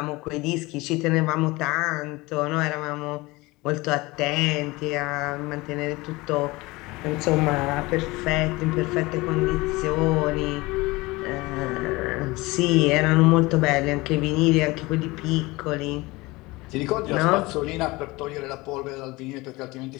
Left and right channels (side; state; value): right; quieter; 22.1 dB